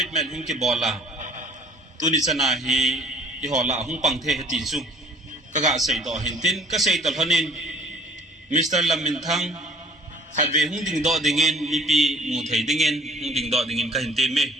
hung ki bola tuni chana hi i hola hung pang the ti chu kaga sei do hin tin ka sei tol honin Mr. Lamin thang khatve hung ding do dingin mi pi mu thei dingin hung ding do dingin ka hin te me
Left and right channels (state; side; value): normal; both; correlation 0.52